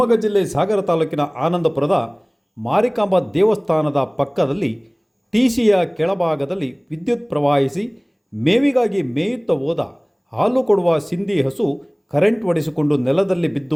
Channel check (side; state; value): both; identical; correlation 1.00